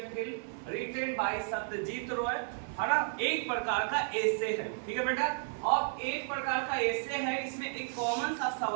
film written by Satyajit Ray, है ना, एक प्रकार का एसे है, ठीक है बेटा। अब एक प्रकार का एसे है, इसमें एक कॉमन सा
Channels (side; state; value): left; silent; 56 dB below the other